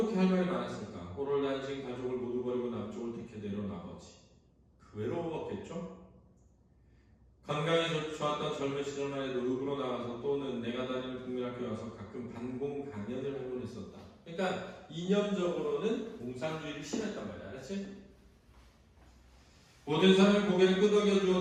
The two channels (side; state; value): both; identical; correlation 1.00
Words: 할 말이 많았을까? 호를 단신 가족을 모두 버리고 남쪽을 택해 내려온 아버지. 그 외로웠겠죠? 건강이 좋았던 젊은 시절만 해도 읍으로 나가서 또는 내가 다니는 국민학교에 와서 가끔 반공 강연을 하곤 했었다. 그러니까 이념적으로는 공산주의를 심했단 말이야. 알았지? 모든 사람이 고개를 끄덕여주어